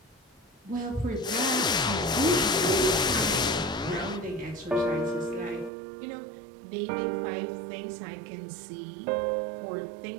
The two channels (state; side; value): drops out; left; at 5.7 s